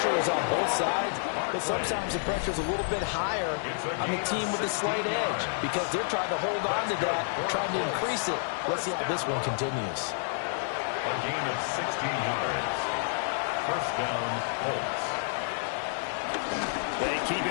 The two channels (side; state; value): right; silent; digital silence